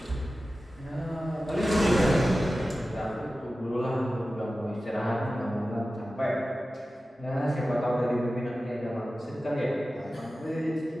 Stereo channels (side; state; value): both; normal; correlation 0.95